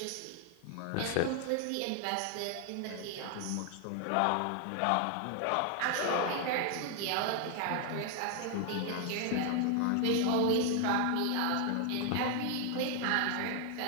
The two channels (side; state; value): both; different; correlation 0.00